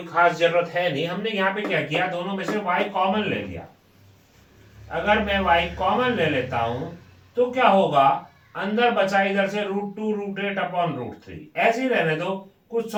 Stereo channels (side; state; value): both; identical; correlation 1.00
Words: खास जरूरत है नहीं। हमने यहाँ पे क्या किया, दोनों में से y कॉमन ले लिया। अगर मैं y कॉमन ले लेता हूं तो क्या होगा, अंदर बचा इधर से √2 √8 अपॉन √3, ऐसे ही रहने दो, कुछ